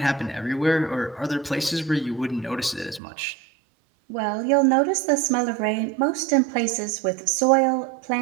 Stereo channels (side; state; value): left; drops out; at 3.0 s